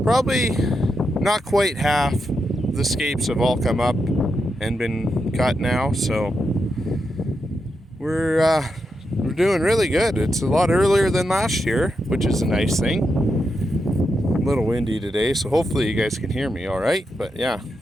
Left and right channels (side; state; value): both; normal; correlation 0.85